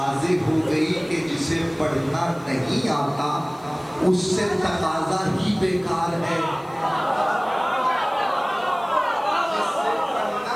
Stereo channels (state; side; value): noise; left; hiss, 29 dB below the sound